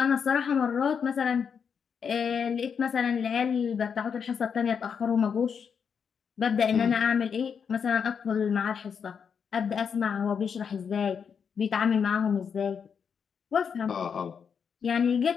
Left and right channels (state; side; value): quieter; right; 6.7 dB